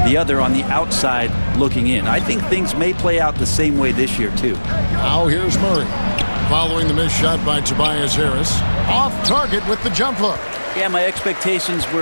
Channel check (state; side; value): inverted; both; correlation -1.00